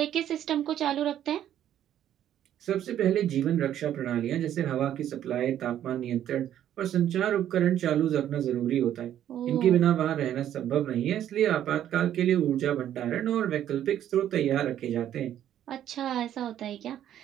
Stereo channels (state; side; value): quieter; left; 11.0 dB